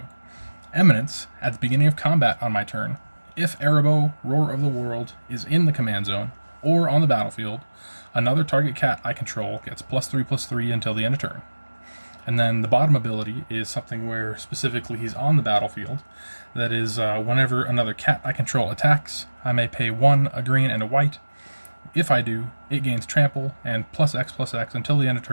Eminence, at the beginning of combat on my turn, if Arahbo, Roar of the World, is in the command zone, or on the battlefield, another target cat I control gets +3/+3 until the end of turn. And then the bottom ability is something where specifically he's on the battlefield. That is, whenever another cat I control attacks, I may pay 1, a green, and a white. If I do, it gains trample and +X/+X until the end of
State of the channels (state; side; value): inverted; both; correlation -1.00